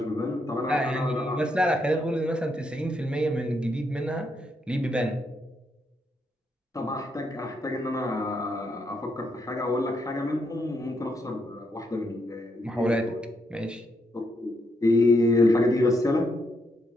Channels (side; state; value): both; normal; correlation 0.78